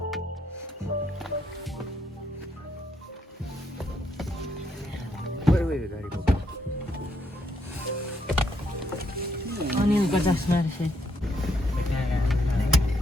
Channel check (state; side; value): normal; both; correlation 0.75